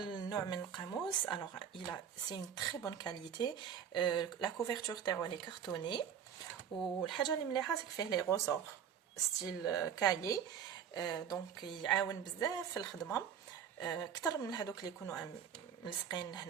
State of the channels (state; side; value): quieter; left; 8.3 dB